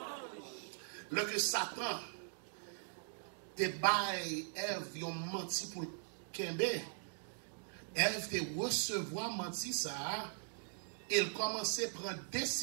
Le que Satan te baille, Ève, ils ont menti pour Kembe. Ève te recevoir menti ça, il commençait à prendre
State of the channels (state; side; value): silent; left; digital silence